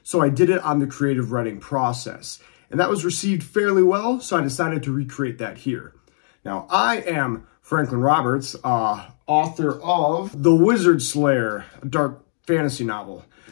So I did it on the creative writing process. And that was received fairly well, so I decided to recreate that here. Now, I am Franklin Roberts, author of The Wizard Slayer, a dark fantasy novel.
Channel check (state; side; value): silent; right; digital silence